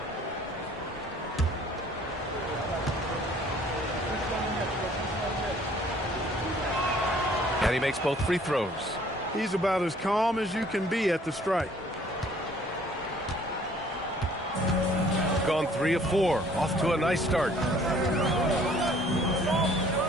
And he makes both free throws. He's about as calm as you can be at the strike. Gone 3 of 4. Off to a nice start.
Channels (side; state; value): both; normal; correlation 0.57